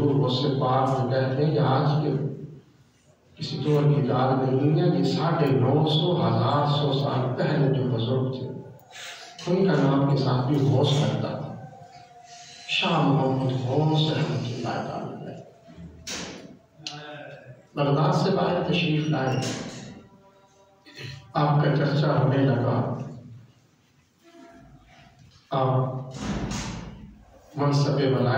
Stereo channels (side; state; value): both; identical; correlation 1.00